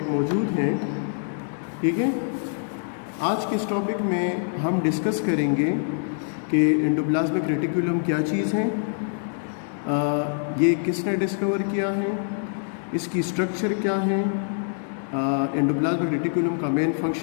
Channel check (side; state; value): right; silent; digital silence